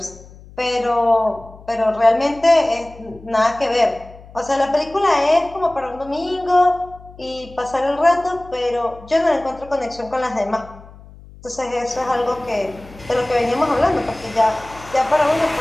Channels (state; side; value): noise; left; hum, 20 dB below the sound